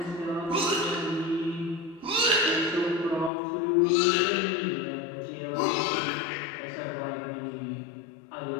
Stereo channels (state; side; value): drops out; right; at 3.3 s